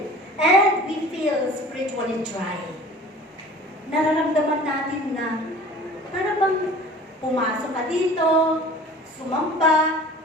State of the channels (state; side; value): normal; both; correlation 0.44